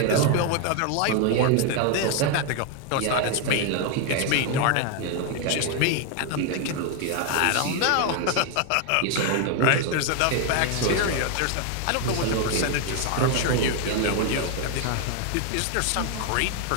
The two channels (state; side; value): different; both; correlation 0.01